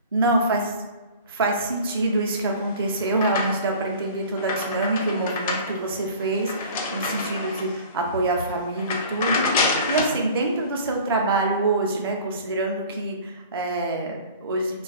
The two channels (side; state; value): both; inverted; correlation -0.43